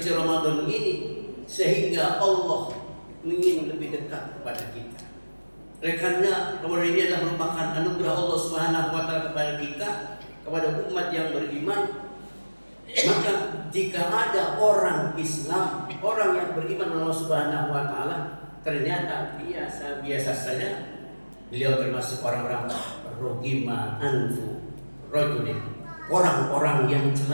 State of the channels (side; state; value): both; inverted; correlation -1.00